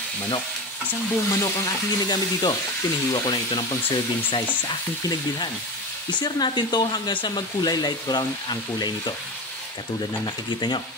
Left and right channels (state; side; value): normal; both; correlation 0.25